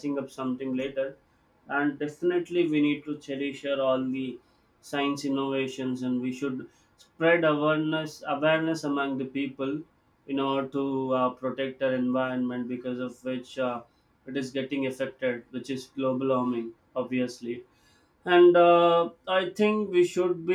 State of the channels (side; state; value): both; identical; correlation 1.00